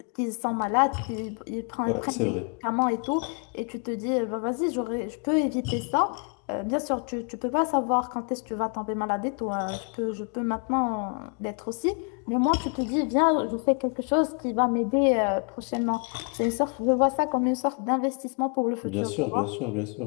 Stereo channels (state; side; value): quieter; right; 38.5 dB